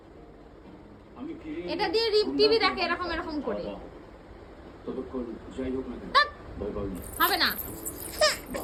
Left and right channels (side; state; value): both; identical; correlation 1.00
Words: এটা দিয়ে টিভি দেখে এরকম করে। হবে না।